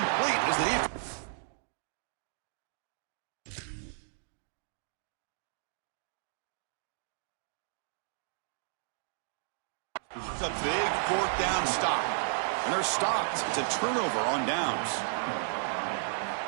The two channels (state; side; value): silent; left; digital silence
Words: as the defense. It's a big 4th down stop. And they're stopped. It's a turnover on downs.